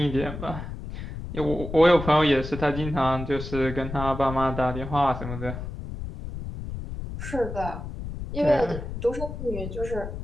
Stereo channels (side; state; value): left; noise; rumble, 8 dB below the sound